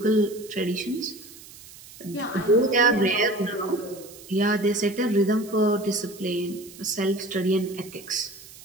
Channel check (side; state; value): right; noise; hiss, 19 dB below the sound